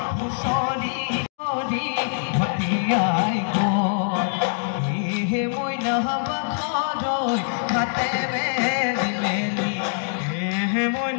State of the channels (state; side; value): silent; right; digital silence